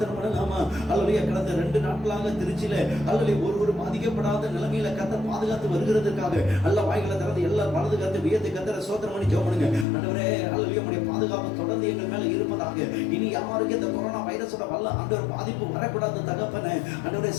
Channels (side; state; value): right; drops out; at 9.9 s